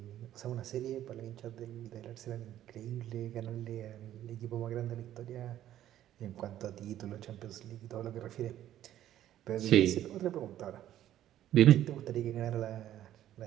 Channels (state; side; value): quieter; left; 12.2 dB